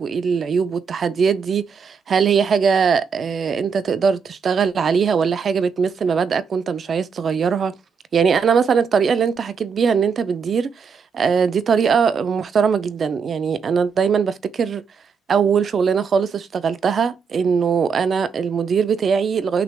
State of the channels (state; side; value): quieter; left; 6.0 dB